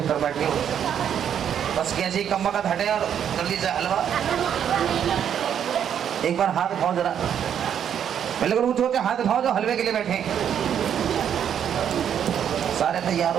बैठ गए। बस कैसे कम्मा का हटे और जल्दी से हलवा। एक बार हाथ उठाओ जरा, पहले ऊंचे ऊंचे हाथ उठाओ जो हलवे के लिए बैठे। सारे तैयार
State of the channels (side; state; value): left; quieter; 8.9 dB